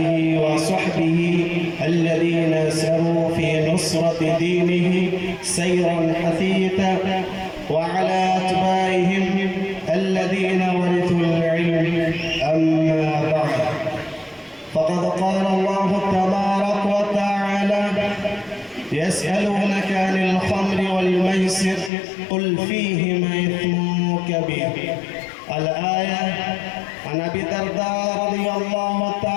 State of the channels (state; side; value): drops out; right; at 21.9 s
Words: وصحبه الذين سروا في نصرة دينه سيرا حثيثا، وعلى أتباعهم الذين ورثوا العلم. أما بعد، فقد قال الله تبارك وتعالى: يسألونك عن الخمر والميسر قل فيهما إثم كبير. الآية. عن أبي الدرداء رضي الله